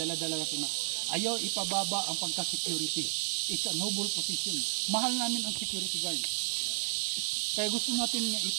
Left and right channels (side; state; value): left; silent; 56 dB below the other